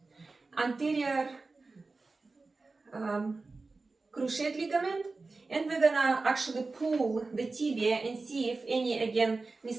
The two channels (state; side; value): quieter; left; 3.7 dB